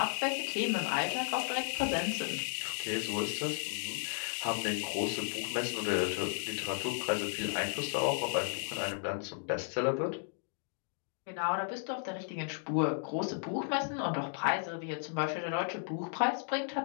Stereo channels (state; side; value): silent; right; digital silence